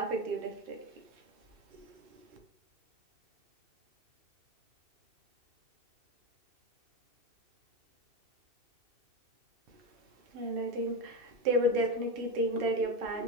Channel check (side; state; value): left; late; 2.6 ms